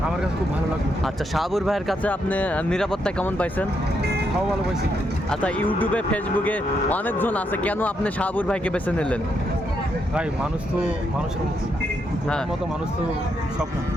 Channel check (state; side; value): normal; both; correlation 0.79